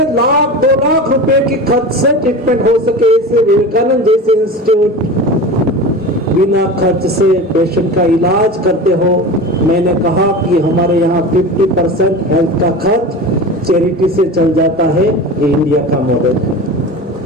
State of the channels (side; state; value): both; normal; correlation 0.31